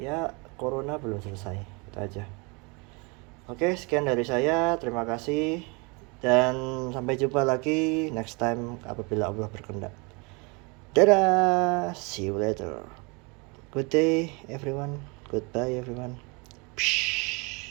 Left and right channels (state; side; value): quieter; left; 29.6 dB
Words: corona belum selesai. Itu aja. Oke, sekian dari saya. Terima kasih dan sampai jumpa lagi next time apabila Allah berkehendak. Dadah, see you later. Good day everyone. Goodbye everyone. Psh.